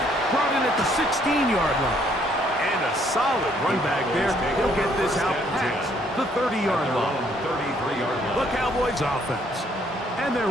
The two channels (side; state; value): both; normal; correlation 0.66